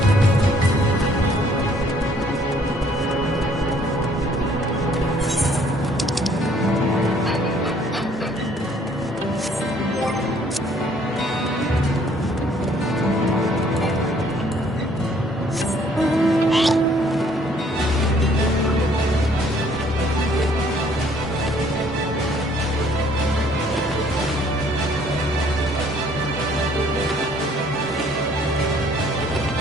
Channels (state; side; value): normal; both; correlation 0.61